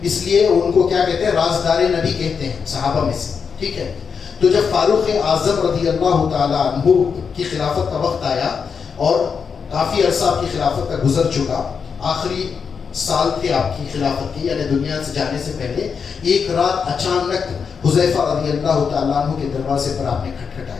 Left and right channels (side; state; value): right; quieter; 6.1 dB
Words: اس لیے ان کو کیا کہتے ہیں رازدار نبی کہتے ہیں صحابہ میں سے. ٹھیک ہے. تو جب فاروق اعظم رضی اللہ تعالیٰ عنہ کی خلافت کا وقت آیا اور کافی عرصہ آپ کی خلافت کا گزر چکا, آخری سال تھے آپ کی خلافت کی یعنی دنیا سے جانے سے پہلے, ایک رات اچانک حذیفہ رضی اللہ تعالیٰ عنہ کے دروازے پر آپ نے